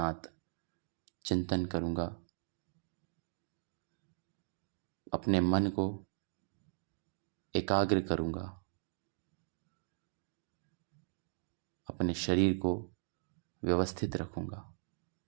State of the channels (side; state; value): left; silent; digital silence